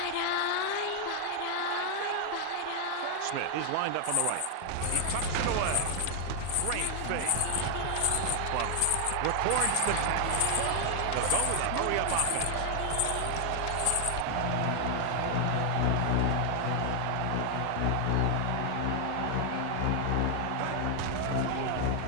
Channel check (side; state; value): both; different; correlation 0.00